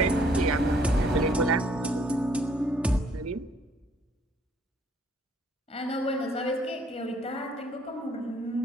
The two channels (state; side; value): normal; both; correlation 0.63